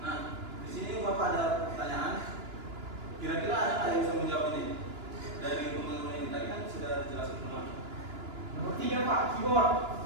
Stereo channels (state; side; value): late; left; 2.9 ms